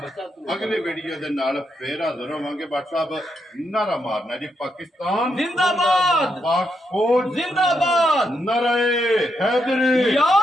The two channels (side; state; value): both; normal; correlation 0.81